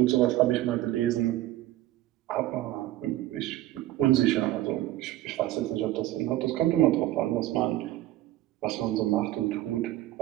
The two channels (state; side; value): quieter; left; 15.3 dB